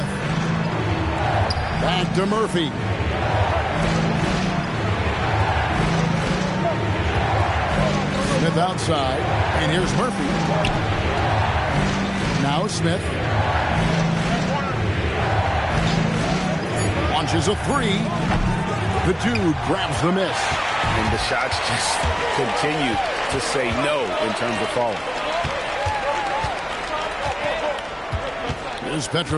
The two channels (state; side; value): identical; both; correlation 1.00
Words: Back to Murphy. Smith outside. And here's Murphy. Now Smith. Launches a three. The dude grabs the miss. And the shots just continue to say no in terms of falling. Here's